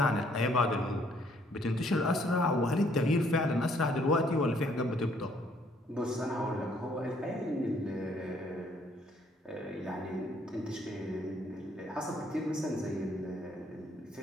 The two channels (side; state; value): both; normal; correlation 0.65